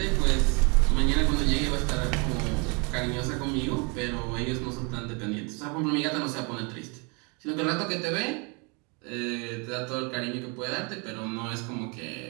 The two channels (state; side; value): quieter; left; 32.4 dB